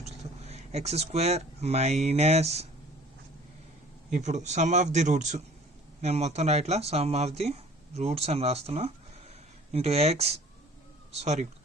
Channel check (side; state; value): both; normal; correlation 0.50